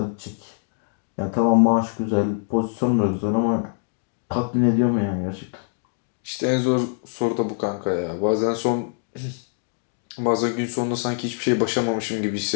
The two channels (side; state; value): right; silent; 63 dB below the other